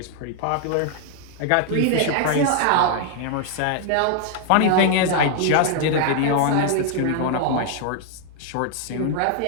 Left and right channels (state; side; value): different; both; correlation 0.00